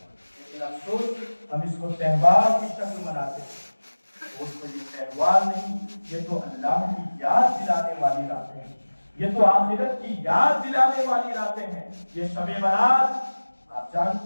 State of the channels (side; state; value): both; inverted; correlation -1.00